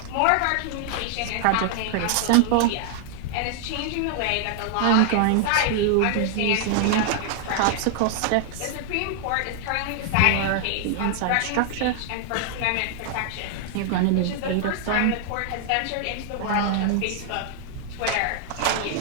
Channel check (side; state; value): both; different; correlation 0.00